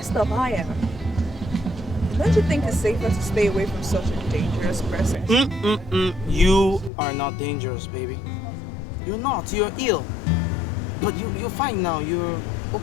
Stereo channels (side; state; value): right; drops out; at 6.9 s